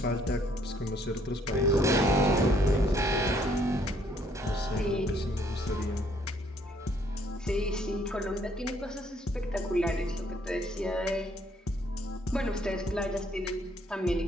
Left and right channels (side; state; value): both; normal; correlation 0.65